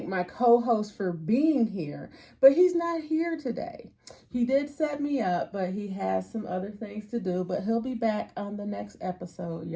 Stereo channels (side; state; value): both; identical; correlation 1.00